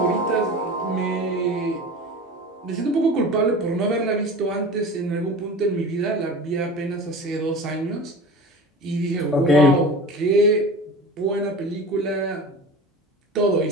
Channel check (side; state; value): both; normal; correlation 0.34